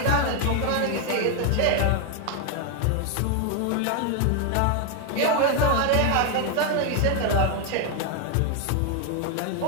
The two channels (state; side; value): different; both; correlation 0.01